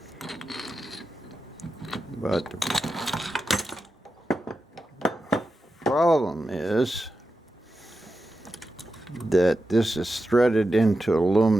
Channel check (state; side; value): normal; both; correlation 0.90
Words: But the problem is that this is threaded into